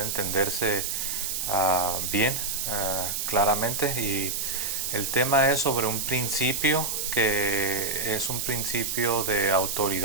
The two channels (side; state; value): right; noise; hiss, 2 dB below the sound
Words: entenderse bien, claramente, y el tema es sobre un principio que es un principio de